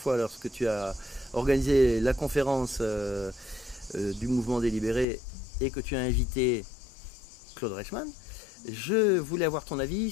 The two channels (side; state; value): right; drops out; at 5.1 s